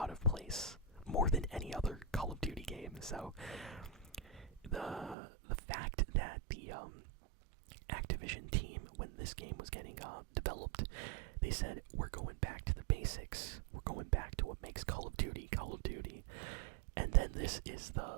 of place, more than any other Call of Duty game. So the fact that the Activision team, when this game was getting developed, they said, we're going back to the basics, we're going back to what makes Call of Duty Call of Duty, and then this is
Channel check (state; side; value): drops out; left; at 5.2 s